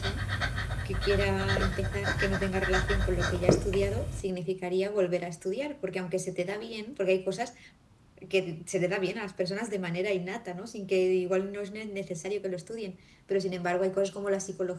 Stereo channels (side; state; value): both; identical; correlation 1.00